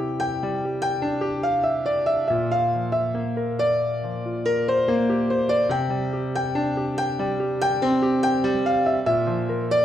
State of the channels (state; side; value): normal; both; correlation 0.84